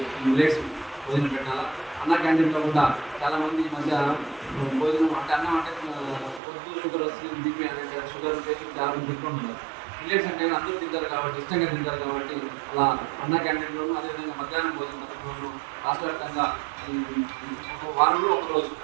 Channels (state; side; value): drops out; left; at 6.4 s